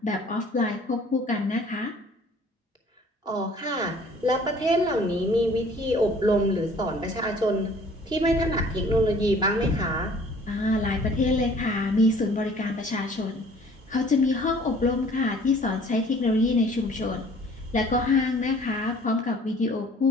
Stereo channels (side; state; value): both; normal; correlation 0.53